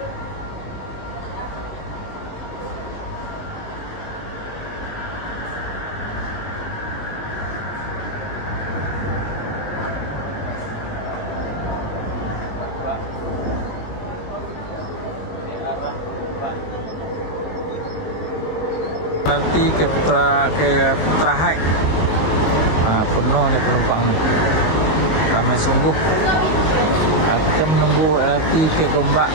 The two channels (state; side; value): late; right; 19 ms